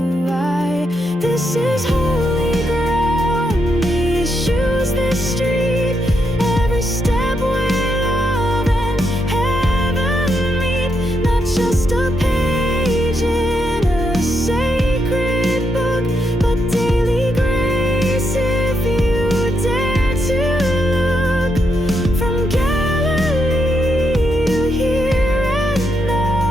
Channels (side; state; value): both; normal; correlation 0.80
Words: I. This is holy ground, these shoes, this street, every step where love and heaven meet. Not just a page in a sacred book, but daily grace if you dare to look. From Galilee to here and